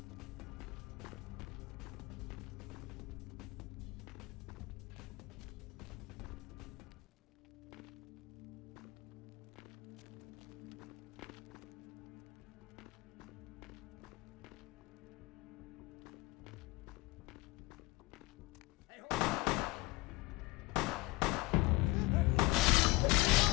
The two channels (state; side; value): quieter; right; 22.2 dB